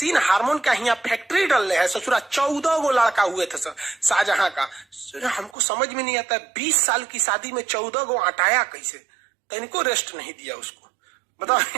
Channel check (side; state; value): left; drops out; at 5.6 s